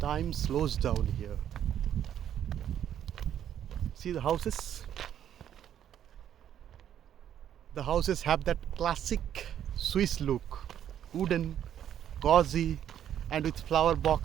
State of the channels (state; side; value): quieter; left; 10.1 dB